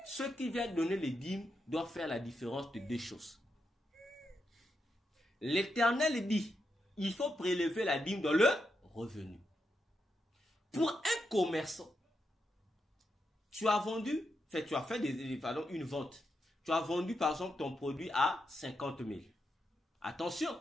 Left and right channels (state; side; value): normal; both; correlation 0.84